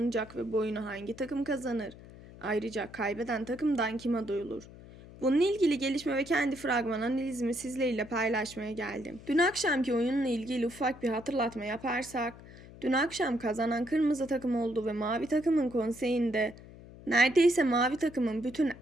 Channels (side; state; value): left; noise; hum, 18 dB below the sound